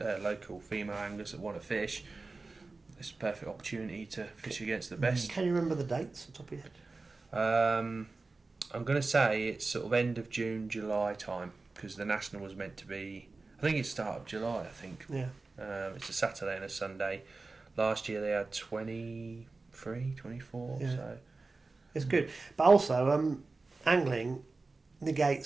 female anglers that want to fish, it's a perfect opportunity to fish against the best. Can you remember the dates on top of your head? I'm going to say it's sort of end of June, July time, because the national was meant to be, I think it's start of July, I think. Yeah. It's a Saturday and a Sunday. Last year they had 23, 24, so... It's good. But also, angling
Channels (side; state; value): left; quieter; 3.7 dB